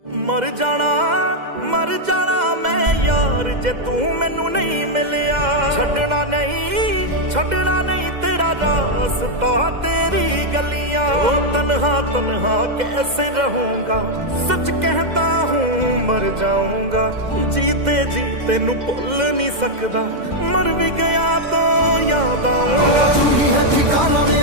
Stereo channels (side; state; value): left; late; 2.0 ms